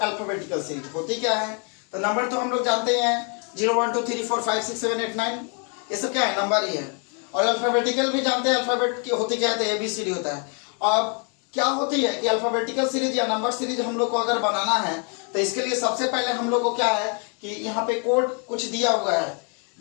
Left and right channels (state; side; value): quieter; right; 38.9 dB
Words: अल्फाबेटिकल सीरीज होती क्या है? तो नंबर तो हम लोग जानते हैं 0 1 2 3 4 5 6 7 8 9, ये सब क्या है? नंबर ही है। और अल्फाबेटिकल भी जानते हैं अल्फाबेट की होती क्या है, तो ABCD होता है। अब क्या होती है कि अल्फाबेटिकल सीरीज या नंबर सीरीज हम लोग को अगर बनाना है तो इसके लिए सबसे पहले हम लोग को क्या है कि यहाँ पे कोड कुछ दिया हुआ है।